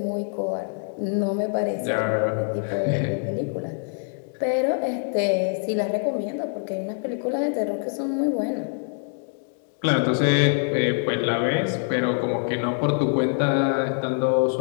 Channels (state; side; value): silent; right; 62 dB below the other